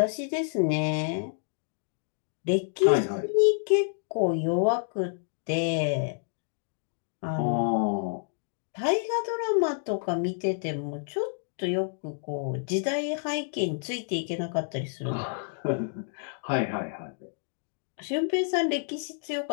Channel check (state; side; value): silent; right; digital silence